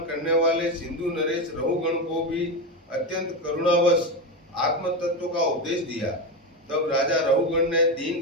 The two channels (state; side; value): normal; both; correlation 0.15